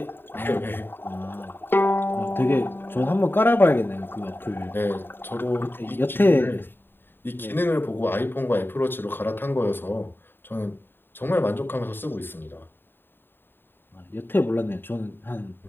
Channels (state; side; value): late; right; 0.098 ms